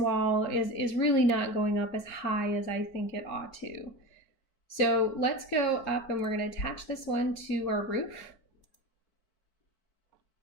is really not going up as high as I think it ought to. So let's go up and we're going to attach this one to our roof.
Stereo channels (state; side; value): late; right; 4.5 ms